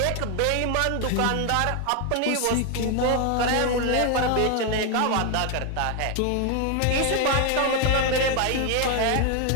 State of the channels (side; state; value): both; different; correlation 0.01